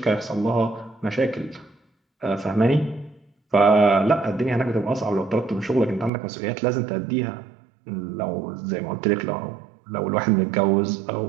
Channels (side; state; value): left; drops out; at 6.1 s